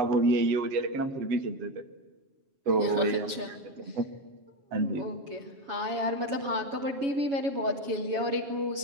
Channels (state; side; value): late; left; 7.2 ms